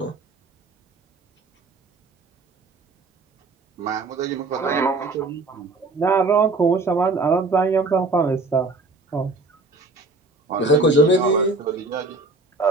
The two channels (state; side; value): quieter; left; 3.3 dB